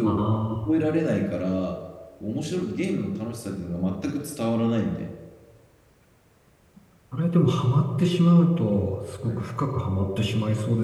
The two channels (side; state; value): both; identical; correlation 1.00